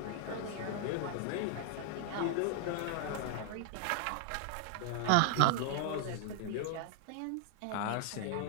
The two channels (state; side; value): different; both; correlation 0.00